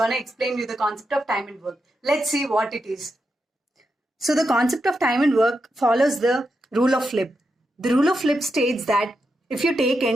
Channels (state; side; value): normal; both; correlation 0.86